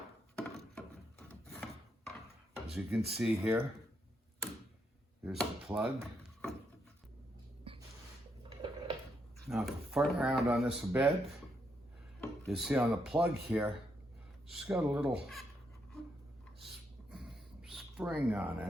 as you can see here, here's the plug. Now, if you fart around on this a bit, you see on the plug here, it's got a little spring on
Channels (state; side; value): normal; both; correlation 0.78